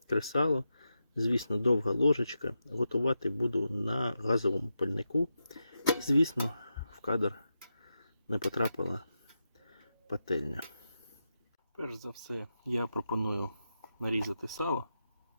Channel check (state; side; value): inverted; both; correlation -0.88